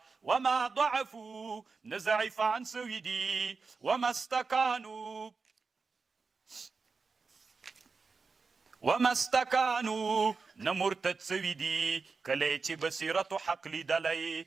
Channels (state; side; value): quieter; left; 4.6 dB